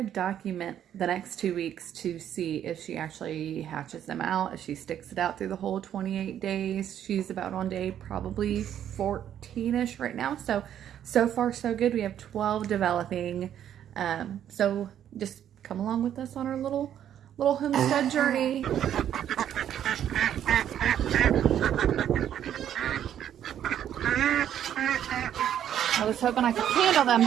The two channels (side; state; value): left; quieter; 10.2 dB